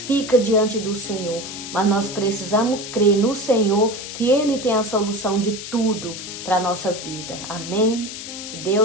diante do Senhor. Mas nós precisamos crer no Senhor, que Ele tem a solução de tudo para a nossa vida. Amém? Que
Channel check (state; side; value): noise; left; hiss, 9 dB below the sound